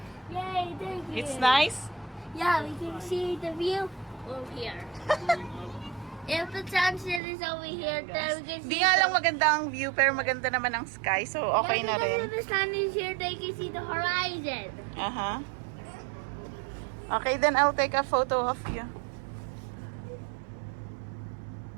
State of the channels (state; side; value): drops out; left; at 7.2 s